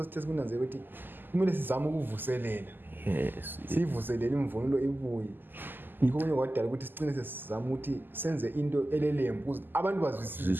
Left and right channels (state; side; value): late; left; 0.092 ms